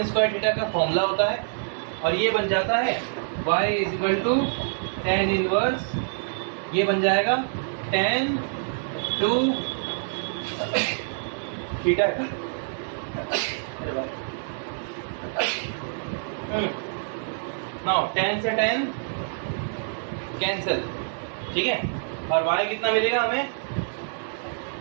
स्क्वायर थीटा का फॉर्मूला होता है और ये बन जाता है y is equal to tan inverse, ये बन जाएगा tan 2 थीटा का। नाउ tan से tan कैंसिल, ठीक है, और y कितना मिलेगा हमें?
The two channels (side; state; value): left; silent; digital silence